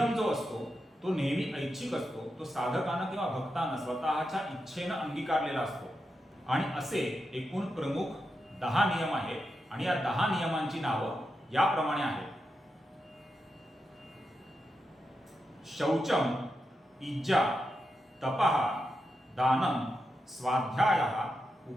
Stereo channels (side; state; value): both; normal; correlation 0.87